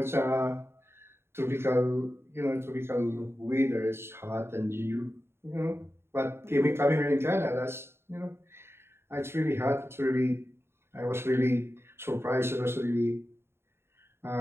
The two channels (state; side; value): late; left; 0.12 ms